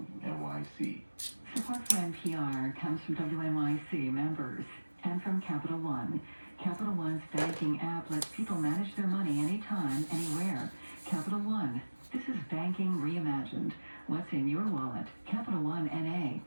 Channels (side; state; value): both; inverted; correlation -1.00